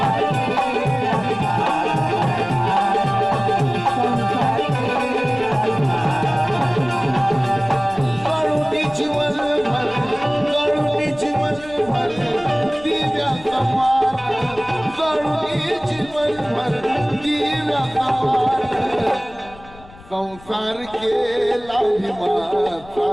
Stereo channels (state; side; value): noise; left; rumble, 21 dB below the sound